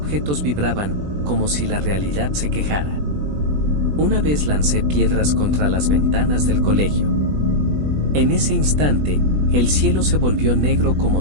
vibraban, como si la realidad se quejara. Una vez lancé piedras contra las ventanas del colegio. En ese instante, el cielo se volvió negro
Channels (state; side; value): late; left; 20 ms